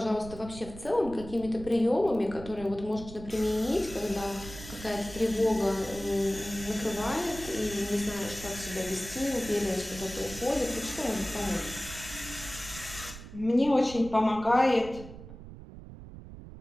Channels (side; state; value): right; noise; rumble, 14 dB below the sound